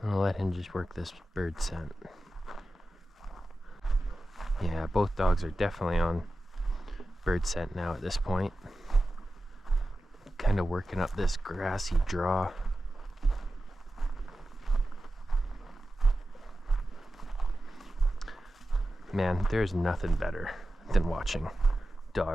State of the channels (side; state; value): both; normal; correlation 0.93